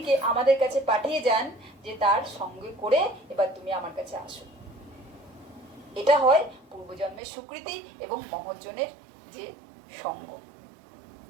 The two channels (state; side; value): drops out; left; at 7.2 s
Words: আমাদের কাছে পাঠিয়ে যান যে তার সঙ্গে করে এবার তুমি আমার কাছে আসো। এটা হয় পূর্বজন্মের স্বীকৃতি এবং মহৎজনের যে সঙ্গ।